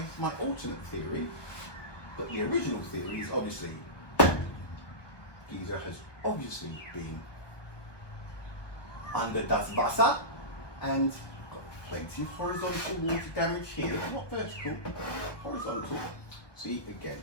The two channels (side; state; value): right; late; 1.2 ms